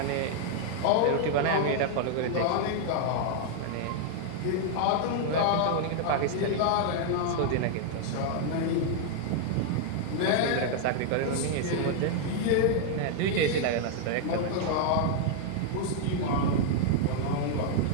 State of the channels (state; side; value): different; both; correlation -0.01